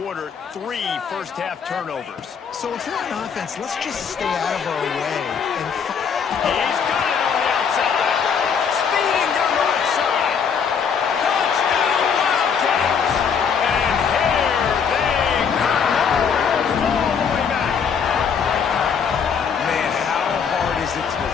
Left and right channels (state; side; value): quieter; right; 6.7 dB